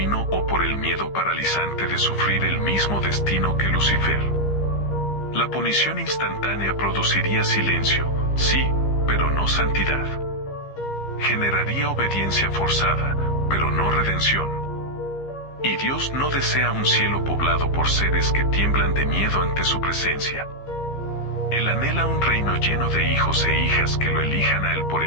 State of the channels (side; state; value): right; late; 15 ms